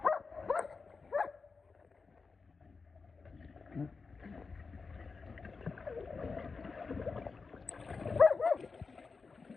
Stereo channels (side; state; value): right; quieter; 4.6 dB